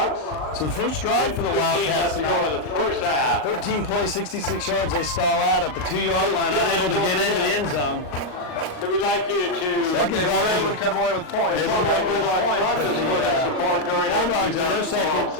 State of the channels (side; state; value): right; late; 39 ms